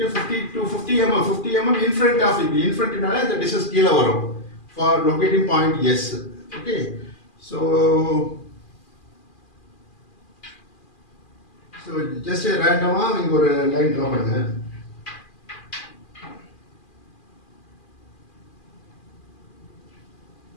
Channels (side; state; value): right; late; 2.4 ms